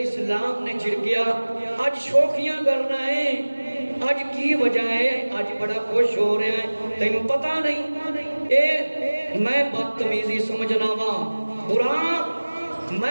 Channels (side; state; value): both; inverted; correlation -1.00